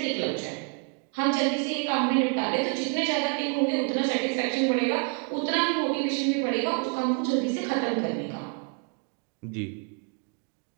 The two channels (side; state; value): left; quieter; 37.1 dB